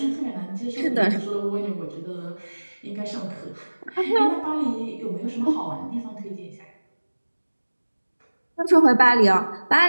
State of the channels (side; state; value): both; inverted; correlation -1.00